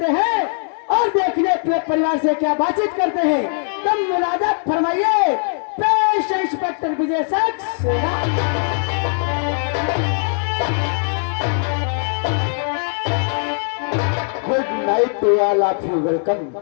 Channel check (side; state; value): right; silent; 65 dB below the other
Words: हैं और देखने अपने परिवार से क्या बातचीत करते हैं। तुम मुलाजा फरमाइए, पेश inspector Vijay Saxena. Good night to all of you, welcome.